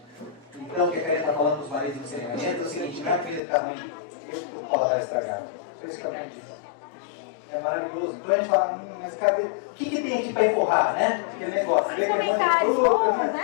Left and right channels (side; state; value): right; drops out; at 3.4 s